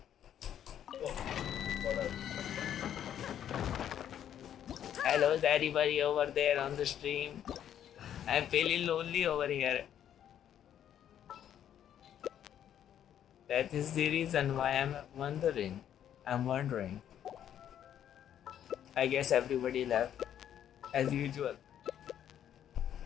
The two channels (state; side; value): quieter; right; 10.1 dB